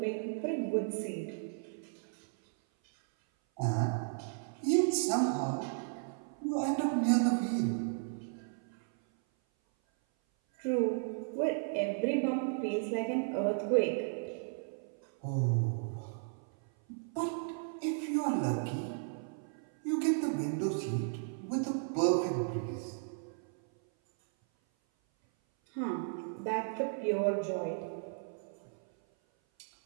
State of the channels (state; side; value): silent; left; 55 dB below the other